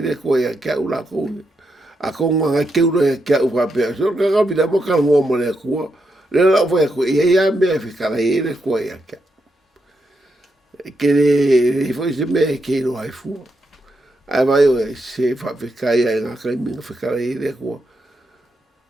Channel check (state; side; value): normal; both; correlation 0.83